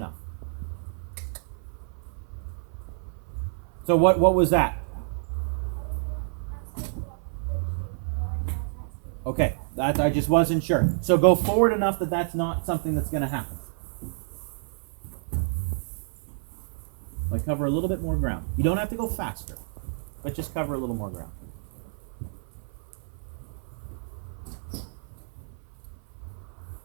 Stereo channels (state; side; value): silent; left; 57 dB below the other